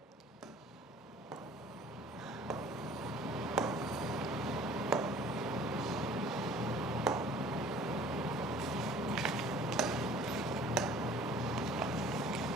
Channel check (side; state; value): both; normal; correlation 0.50